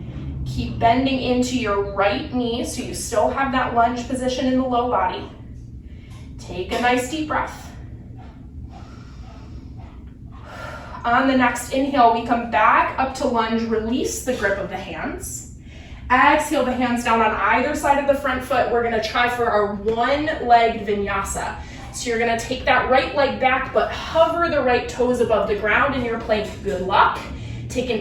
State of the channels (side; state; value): both; identical; correlation 1.00